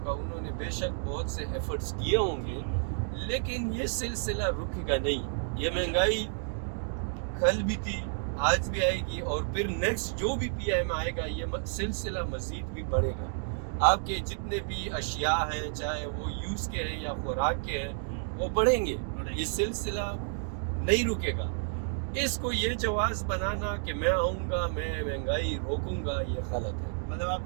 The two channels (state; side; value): silent; left; digital silence